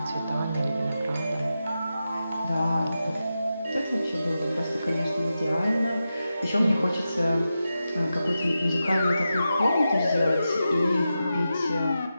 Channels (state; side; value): inverted; both; correlation -0.90